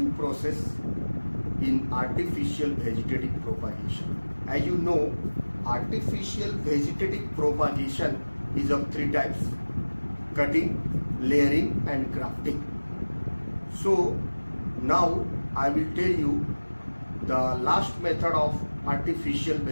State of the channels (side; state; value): both; inverted; correlation -1.00